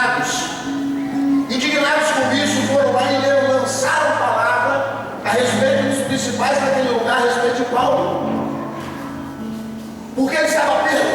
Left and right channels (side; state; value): both; identical; correlation 1.00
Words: Indignados com isso, foram lá e lançaram palavra a respeito dos principais daquele lugar, a respeito de Paulo. Porque ele estava